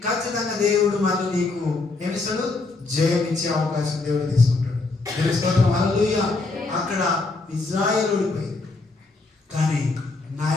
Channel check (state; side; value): quieter; right; 3.6 dB